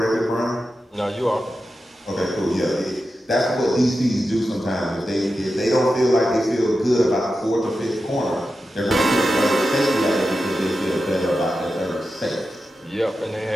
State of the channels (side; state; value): both; normal; correlation 0.91